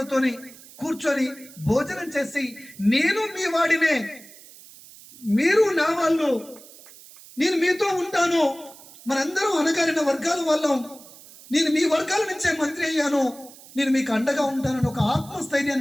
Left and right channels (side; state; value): right; noise; hiss, 20 dB below the sound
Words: కూర్చొని భోజనం చేసి నేను మీ వాడినే, మీరు నా వాళ్ళు, నేను మీతో ఉంటాను, మనందరం అనగారిన వర్గాల వాళ్ళం, నేను మీ వర్గాల నుంచే మంత్రి అయ్యాను, నేను మీకు అండగా ఉంటానని ఒక